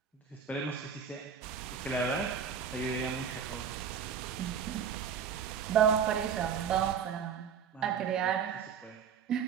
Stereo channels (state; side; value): quieter; left; 7.3 dB